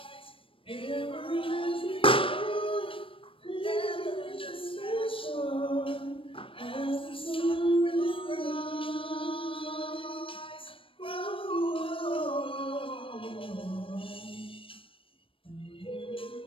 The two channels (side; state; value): right; late; 0.26 ms